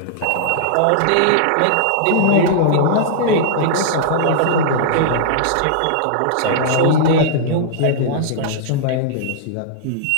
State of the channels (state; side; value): different; both; correlation -0.01